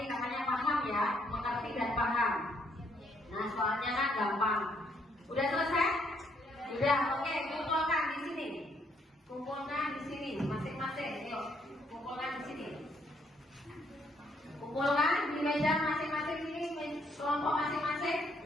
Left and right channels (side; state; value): both; normal; correlation 0.71